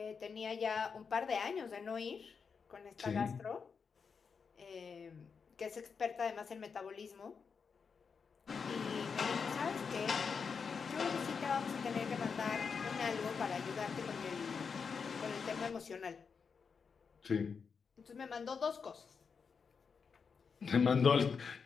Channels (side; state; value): right; quieter; 5.7 dB